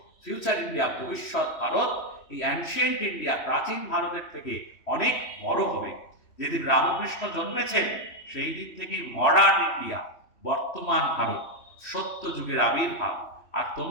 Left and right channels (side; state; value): right; late; 3.1 ms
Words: ফিউচার ইন্ডিয়া, ভবিষ্যৎ ভারত, এই অ্যানশিয়েন্ট ইন্ডিয়া, প্রাচীন ভারতের থেকে অনেক বড় হবে। যেদিন রামকৃষ্ণ জন্মেছেন সেই দিন থেকে মডার্ন ইন্ডিয়া, বর্তমান ভারত, সত্য যুগের আবির্ভাব। আর